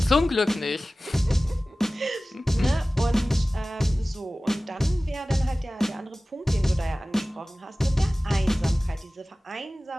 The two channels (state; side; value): normal; both; correlation 0.97